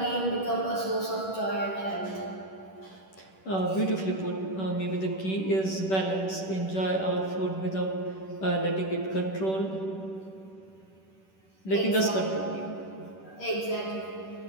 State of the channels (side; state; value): right; late; 10 ms